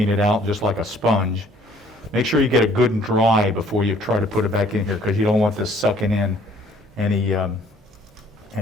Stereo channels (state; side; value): normal; both; correlation 0.58